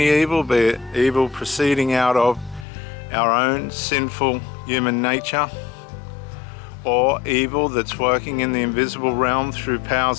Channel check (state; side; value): drops out; right; at 2.7 s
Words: evil, be it evil proceeding out of our own sinful human nature, or evil that's working in the invisible realm through